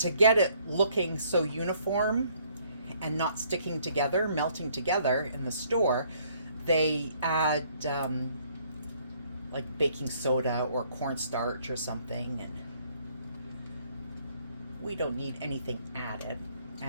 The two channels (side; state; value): both; inverted; correlation -0.64